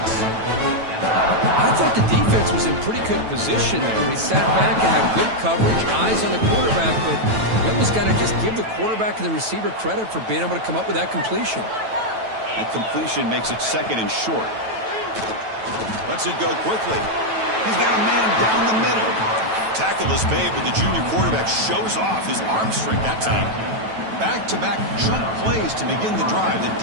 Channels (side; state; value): left; late; 9.1 ms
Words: I thought the defense was in pretty good position there. They sat back and had good coverage, eyes on the quarterback, but you almost got to just give the quarterback and the receiver credit for being able to come up with that completion. And completion makes it second and short. Lets it go quickly. He's got a man down the middle. Tackle is made, but the junior quarterback shows off his arm strength that time. Back-to-back jump plays to begin the drive. The